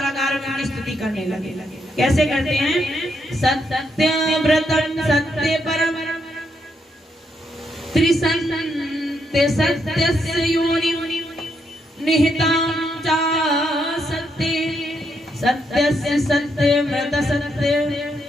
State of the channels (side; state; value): both; normal; correlation 0.78